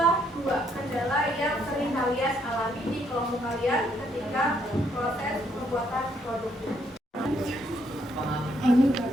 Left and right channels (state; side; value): normal; both; correlation 0.71